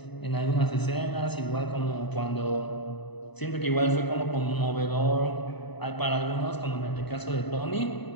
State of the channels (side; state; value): right; late; 0.99 ms